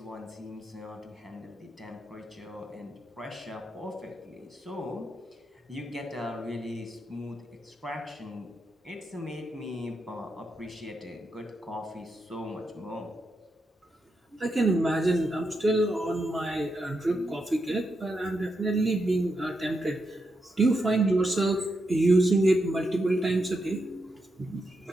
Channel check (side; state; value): both; normal; correlation 0.84